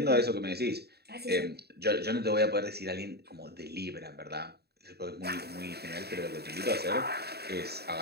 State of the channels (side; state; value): left; late; 0.47 ms